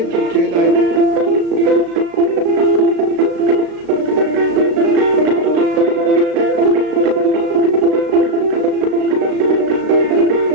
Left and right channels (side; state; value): left; late; 35 ms